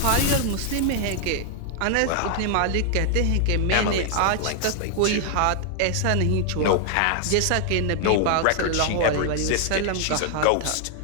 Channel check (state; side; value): different; both; correlation 0.00